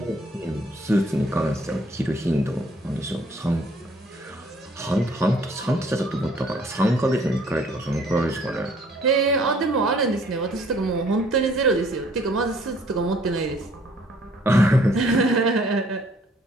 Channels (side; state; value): both; normal; correlation 0.60